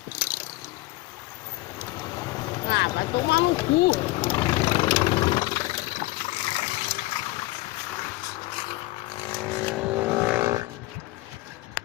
Ah, vai tomar no cu.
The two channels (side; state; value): right; quieter; 19.9 dB